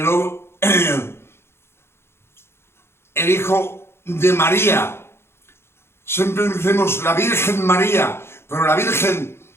hijo de María. Siempre decimos la Virgen María, pero la Virgen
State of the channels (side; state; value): right; late; 0.12 ms